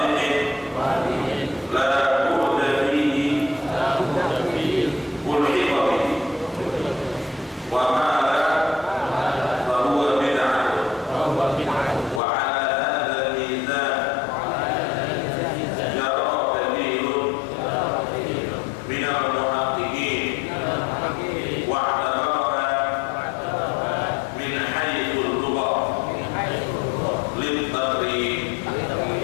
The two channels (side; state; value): right; drops out; at 12.2 s